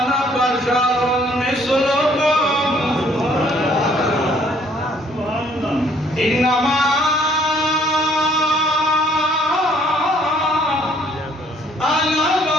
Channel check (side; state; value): both; normal; correlation 0.62